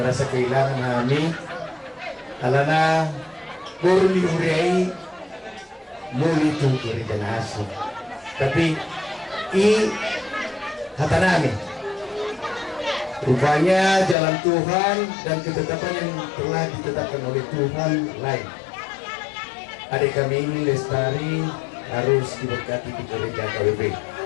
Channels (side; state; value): right; drops out; at 14.2 s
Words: kehilangan kami alana Borli Huriai muli tu gereja nasi. Tapi hatanami rupanya jalan Tuhan dan ketetapan yang telah ditetapkan oleh Tuhan lain. Adik kami ini Lestari harus diberkati di gereja KWB.